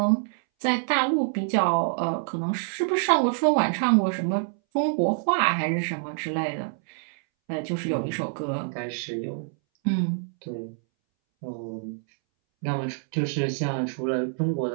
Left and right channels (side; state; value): left; silent; 61 dB below the other